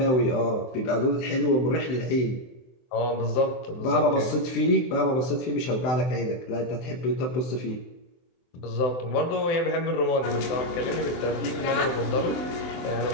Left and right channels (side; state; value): right; late; 23 ms